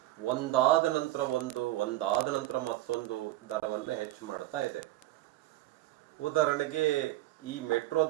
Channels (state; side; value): quieter; left; 16.4 dB